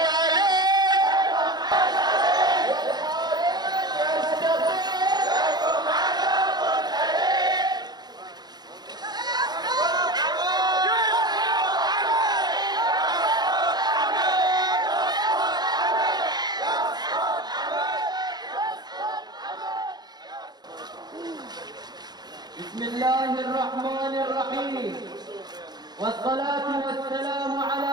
بسم الله الرحمن الرحيم، والصلاة والسلام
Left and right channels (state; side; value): late; left; 0.20 ms